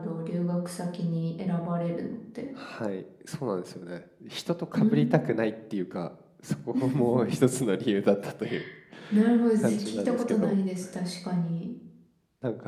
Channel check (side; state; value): both; identical; correlation 1.00